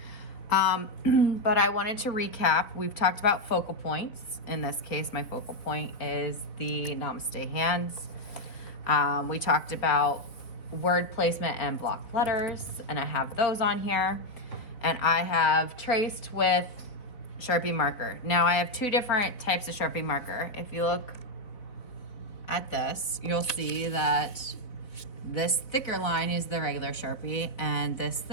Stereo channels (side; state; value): right; late; 4.0 ms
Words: But I wanted to recap. We've talked about focal points. In this case, my focal point is the Namaste hands. We talked about word placement and block letters, and I have those on here. And I have traced with Sharpie marker. Now I have two different types of Sharpie marker. If you look at this, you'll see that this thicker line is the regular Sharpie and this